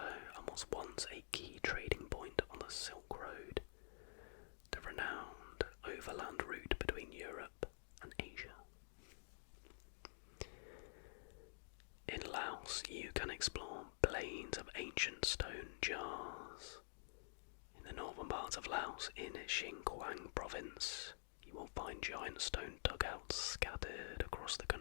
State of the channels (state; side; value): silent; right; digital silence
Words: and was once a key trading point on the Silk Road, the renowned overland route between Europe and Asia. In Laos, jars. In the northern parts of Laos, in Xinjiang province, you will find giant stone dugouts scattered across the